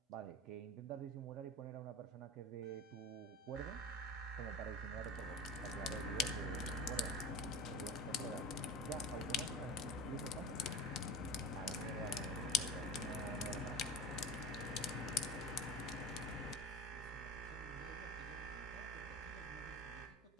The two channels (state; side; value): normal; both; correlation 0.31